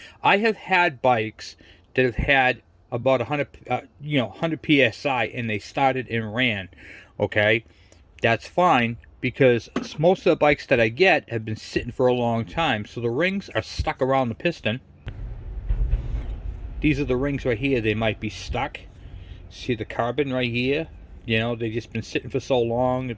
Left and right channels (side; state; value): both; identical; correlation 1.00